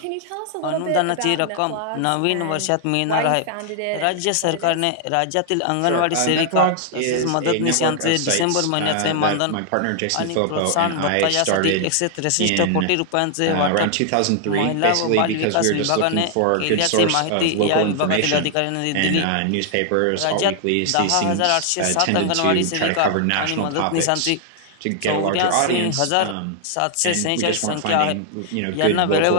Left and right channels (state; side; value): different; both; correlation 0.00